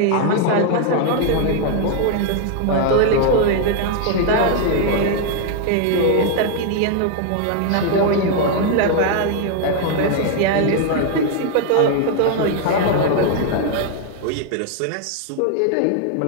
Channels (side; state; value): both; different; correlation 0.00